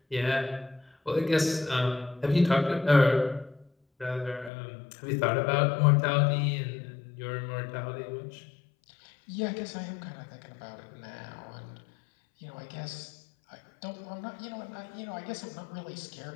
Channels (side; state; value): right; drops out; at 4.5 s